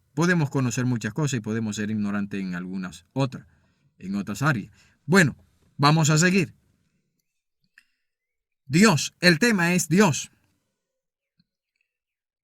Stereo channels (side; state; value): both; identical; correlation 1.00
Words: podemos conocer muchas cosas y podemos ser ignorantes en algunas otras, en otras áreas. Bueno, vamos a seguir. Dios, el tema es Dios.